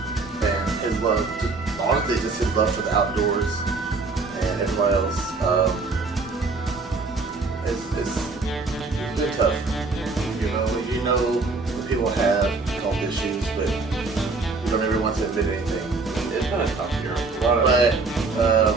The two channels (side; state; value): left; quieter; 3.9 dB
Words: and his love. Honestly, just his love for the outdoors and everybody else. It's been tough. You know when people have health issues, but you don't ever want to admit anything. It's been a tough year. But